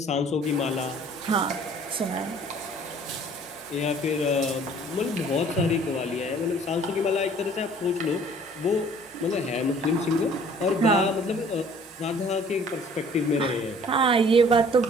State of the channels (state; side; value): normal; both; correlation 0.54